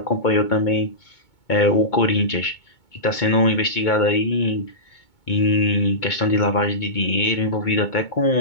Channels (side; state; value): right; late; 2.2 ms